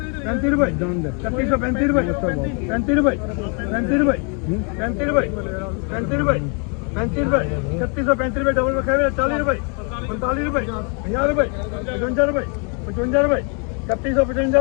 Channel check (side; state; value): right; quieter; 37.6 dB